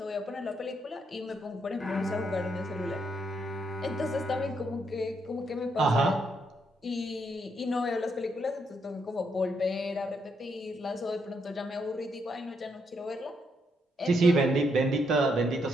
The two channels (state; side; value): normal; both; correlation 0.77